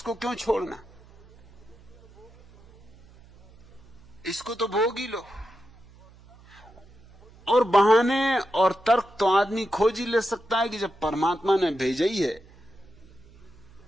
क्यों छोड़ना, इसको तो भोग ही लो। और बहाने और तर्क तो आदमी खोज ही ले सकता है कि जब परमात्मा ने भेजा ही है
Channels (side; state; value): right; noise; hum, 24 dB below the sound